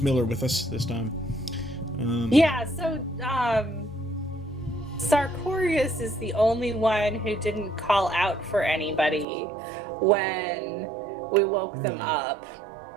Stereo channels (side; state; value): left; drops out; at 9.2 s